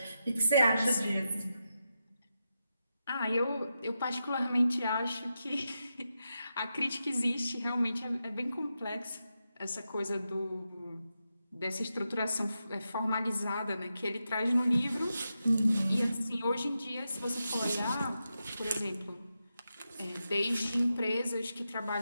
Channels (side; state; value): both; inverted; correlation -0.88